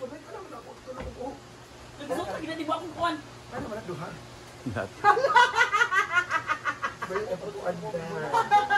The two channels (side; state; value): both; identical; correlation 1.00